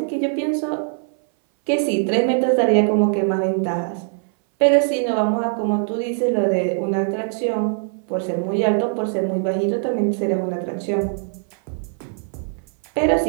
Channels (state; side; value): silent; left; 59 dB below the other